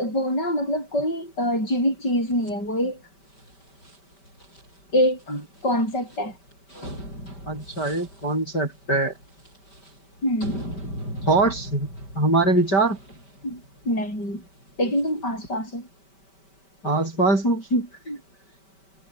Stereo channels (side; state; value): right; late; 5.2 ms